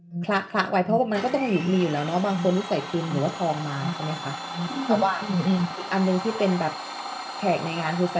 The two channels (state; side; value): identical; both; correlation 1.00